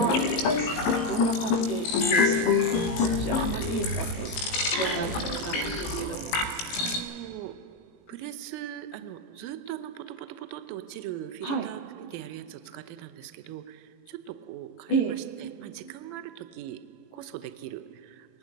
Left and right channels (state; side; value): late; right; 18 ms